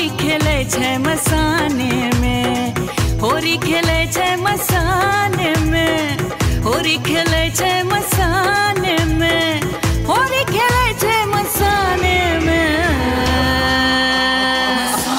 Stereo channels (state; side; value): identical; both; correlation 1.00